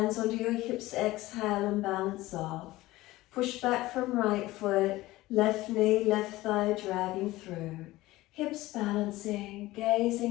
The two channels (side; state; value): right; quieter; 18.0 dB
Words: onto your hips, exhale and balance off. Push back from right foot, left knee, left thigh dragging through. Hips balancing,